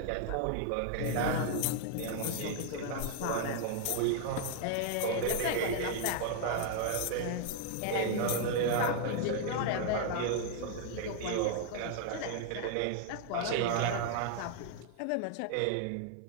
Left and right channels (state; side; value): different; both; correlation 0.00